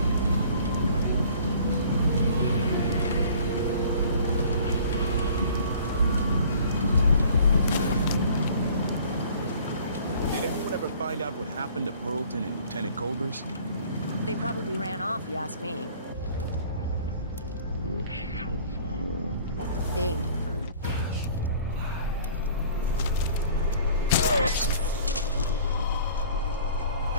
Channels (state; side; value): inverted; both; correlation -0.51